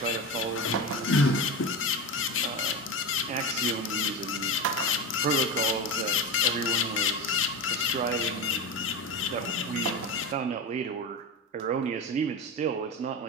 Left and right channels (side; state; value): both; normal; correlation 0.21